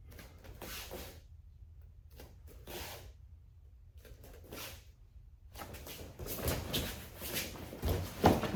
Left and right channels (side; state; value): both; identical; correlation 1.00